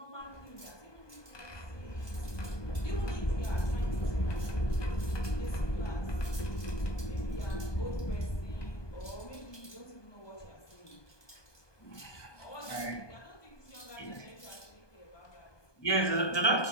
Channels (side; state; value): right; late; 1.2 ms